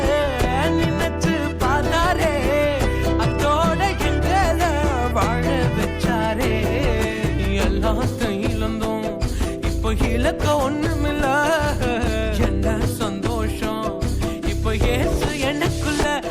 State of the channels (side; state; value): both; identical; correlation 1.00